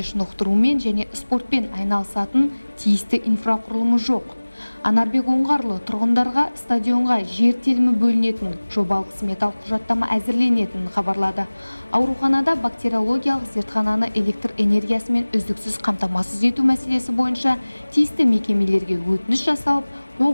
шынықтырумен және спортпен айналысатын тиісті инфрақұрылымы жоқ. Анарбек Оңғарлы тұрғындарға стадионға жер телімі бөлінетін, жобалық сметалық құжаттама әзірленетінін хабарлады. Ауруханада бактериологиялық зертхананы электр энергиясымен үздіксіз қамтамасыз ету мәселесі бойынша тиісті мекемелерге өтініш жасалып,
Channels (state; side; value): inverted; both; correlation -1.00